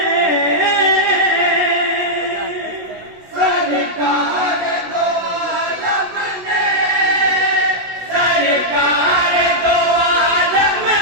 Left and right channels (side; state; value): left; late; 16 ms